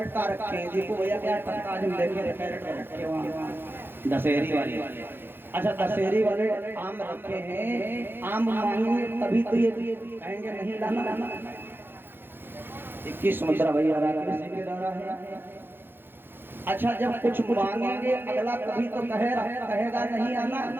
रखे हैं, देखो भैया क्या टक्का जो लेके कैरेट भर रखे वहाँ दशहरी वाले। अच्छा दशहरी वाले आम रखे हैं, आम मांगेंगे तभी तो ये कहेंगे नहीं लाना। 21 मुद्रा भैया है। अच्छा जब कुछ मांगेंगे अगला कभी तो कहेगा नहीं आना।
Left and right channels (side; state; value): left; late; 0.10 ms